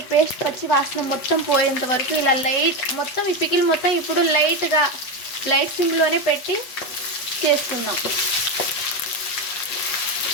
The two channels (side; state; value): right; late; 8.0 ms